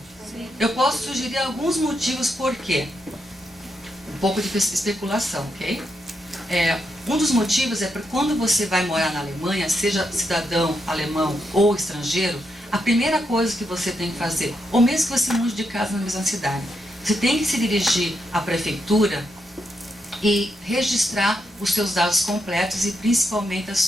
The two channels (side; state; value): both; normal; correlation 0.82